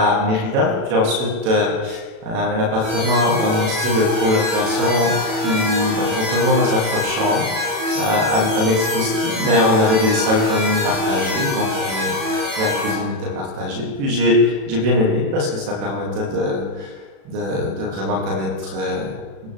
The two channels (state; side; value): late; left; 36 ms